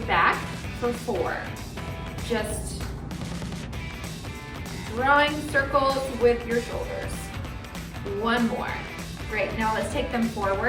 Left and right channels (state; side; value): identical; both; correlation 1.00